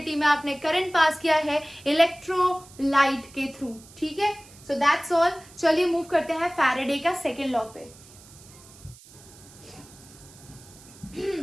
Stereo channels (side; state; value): right; noise; hiss, 22 dB below the sound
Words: में आपने करंट पास किया है इलेक्ट्रोलाइट के थ्रू, ठीक है। सो दैट्स ऑल। चलिए मूव करते हैं फैराडे का सेकेंड लॉ पे।